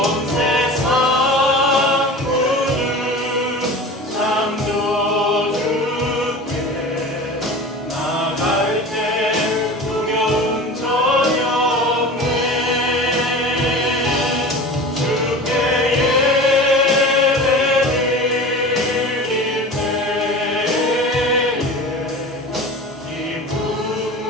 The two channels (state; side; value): normal; both; correlation 0.35